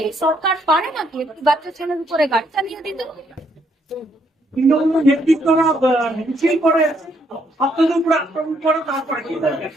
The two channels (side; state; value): both; normal; correlation 0.72